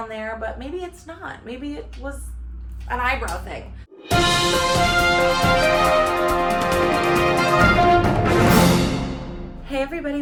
there, but maybe it's not. Maybe it was an eyebrow thing. Hey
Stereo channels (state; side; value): identical; both; correlation 1.00